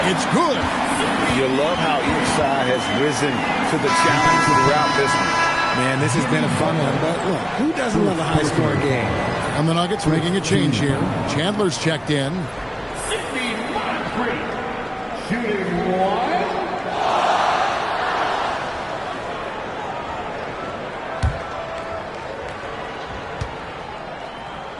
It's good. You love how each side has risen to the challenge throughout this one. Man, this has been a fun one, but look, who doesn't love a high-scoring game? And the Nuggets making a change here. Chandler's checked in. Shooting 1.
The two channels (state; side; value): identical; both; correlation 1.00